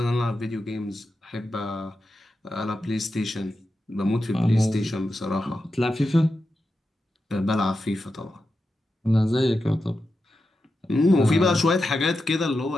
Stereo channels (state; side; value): normal; both; correlation 0.89